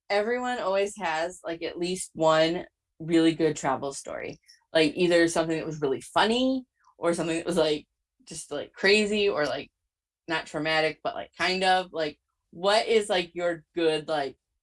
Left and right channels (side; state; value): both; identical; correlation 1.00